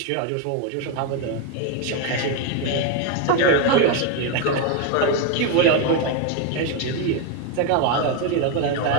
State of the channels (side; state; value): both; different; correlation 0.02